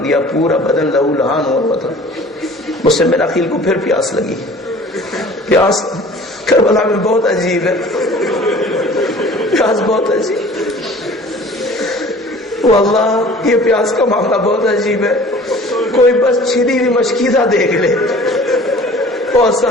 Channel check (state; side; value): normal; both; correlation 0.47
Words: پورا بدن لہو لہان ہوا تھا۔ مسلم بن عقیل کو پھر پیاس لگی۔ پیاس کربلا میں بہت عجیب ہے، پیاس بہت عجیب، واللہ یہ پیاس کا معاملہ بہت عجیب ہے۔ کوئی بس چھری ہوئی مشکیزہ دیکھ لے، بہت